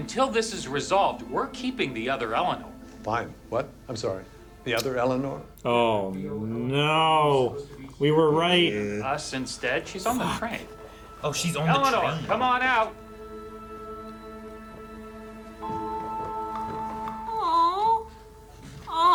this is resolved, we're keeping the other Eleanor. Fine. What? I'm sorry. The other Eleanor? Oh, no. We were right. Us instead? She's on the train. Oh, she's on Eleanor, the train. come on out. Oh.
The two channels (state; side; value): identical; both; correlation 1.00